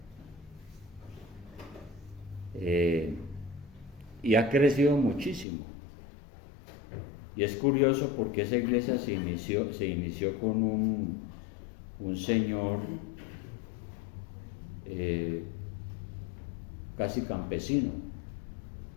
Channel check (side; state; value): right; drops out; at 5.5 s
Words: Y ha crecido muchísimo. Y es curioso porque esa iglesia se inició con un señor casi campesino,